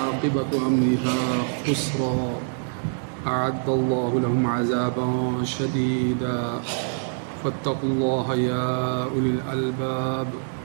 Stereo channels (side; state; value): left; silent; 62 dB below the other